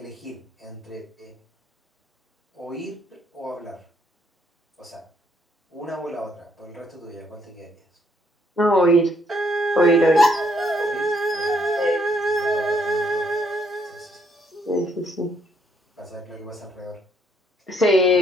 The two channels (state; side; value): normal; both; correlation 0.70